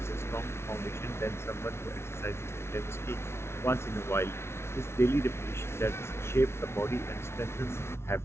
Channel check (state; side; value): late; right; 0.12 ms